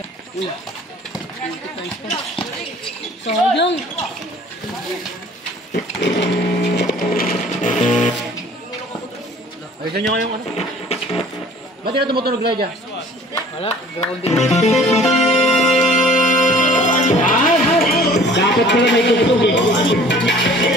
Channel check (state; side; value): normal; both; correlation 0.50